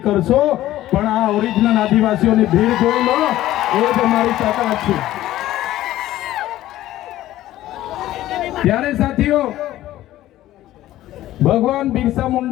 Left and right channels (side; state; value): right; quieter; 14.6 dB